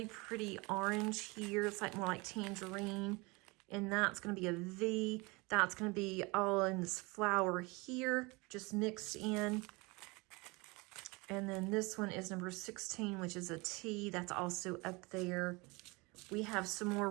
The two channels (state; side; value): quieter; left; 26.0 dB